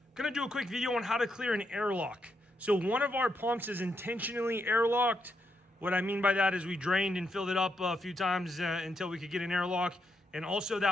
do a quick video on how to clear an airlock. So one of our pumps is intentionally airlocked. What I mean by that is we drained and filled it up a few times until we could get an airlock. And also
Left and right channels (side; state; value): both; normal; correlation 0.80